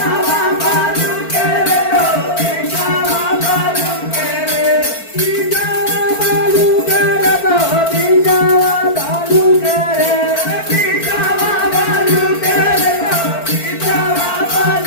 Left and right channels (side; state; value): right; late; 4.4 ms